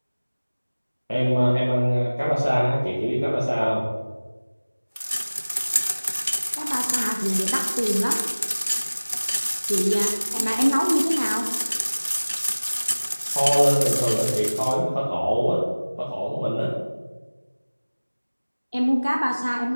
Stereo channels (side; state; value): both; inverted; correlation -1.00